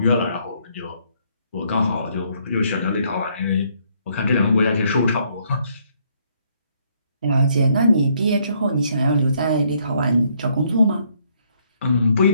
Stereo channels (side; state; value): both; inverted; correlation -0.69